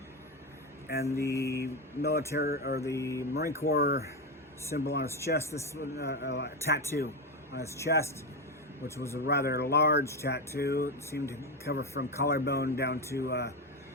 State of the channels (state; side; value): normal; both; correlation 0.13